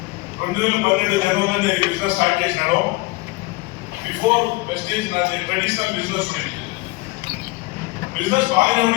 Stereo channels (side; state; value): right; quieter; 22.8 dB